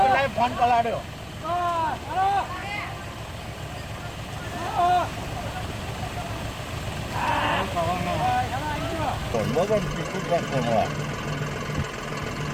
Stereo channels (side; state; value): both; identical; correlation 1.00